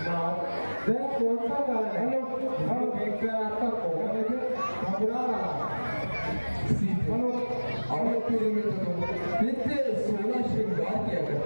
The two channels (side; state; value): both; inverted; correlation -1.00